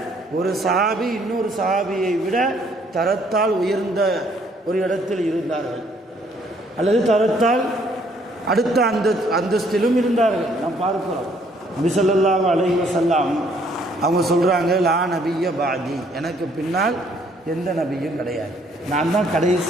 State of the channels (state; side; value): normal; both; correlation 0.64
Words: ஒரு சஹாபி இன்னொரு சஹாபியை விட தரத்தால் உயர்ந்த ஒரு இடத்தில் இருந்தார்கள், அல்லது தரத்தால் அடுத்த அந்தஸ்திலும் இருந்தார்கள். நாம் பார்க்கிறோம். நபி ஸல்லல்லாஹு அலைஹி வஸல்லம் அவங்க சொல்கிறாங்க, லா நபிய பாதி, எனக்கு பின்னால் எந்த நபியும் கிடையாது, நான் தான்